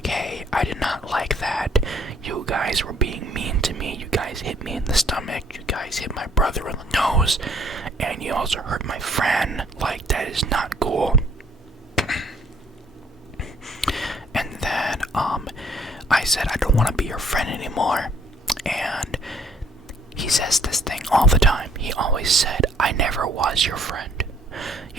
hey, I did not like that. You guys were being mean to me. You guys hit me in the stomach. You guys hit my brother in the nose. And you also hurt my friend. Like, that is not cool. And then, I said, I don't want to be your friend anymore. And he says this thing all the time. He always said, I never was your friend.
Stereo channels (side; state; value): both; normal; correlation 0.62